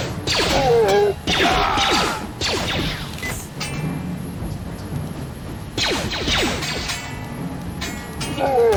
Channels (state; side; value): identical; both; correlation 1.00